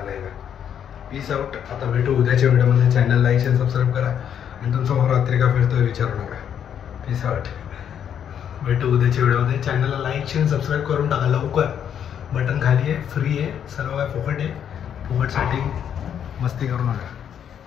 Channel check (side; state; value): right; quieter; 8.9 dB